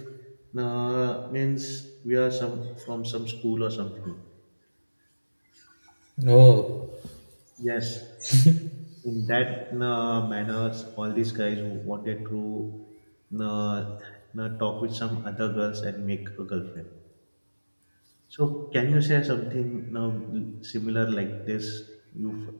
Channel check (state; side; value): inverted; both; correlation -1.00